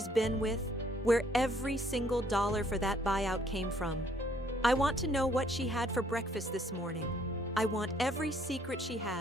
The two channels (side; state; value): both; normal; correlation 0.65